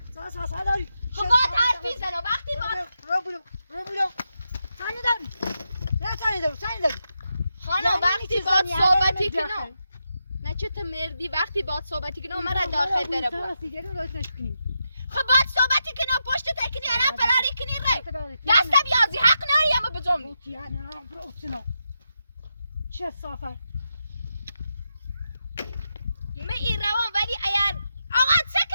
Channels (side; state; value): both; inverted; correlation -0.86